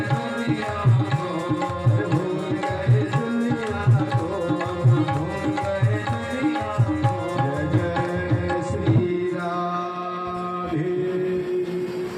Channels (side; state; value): both; identical; correlation 1.00